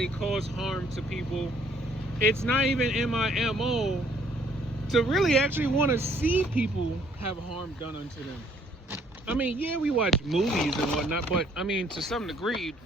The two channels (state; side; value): normal; both; correlation 0.63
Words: cause harm to people. It's not even in my MO to really actually want to see people have harm done unto them. I mean, yeah, we watch movies and whatnot, but I mean, to some degree,